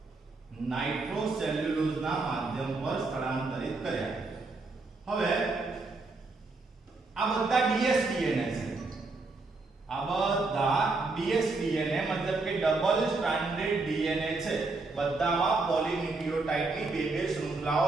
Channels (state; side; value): quieter; left; 3.6 dB